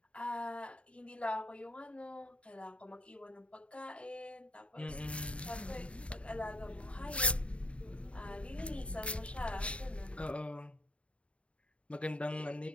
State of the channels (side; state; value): right; late; 0.061 ms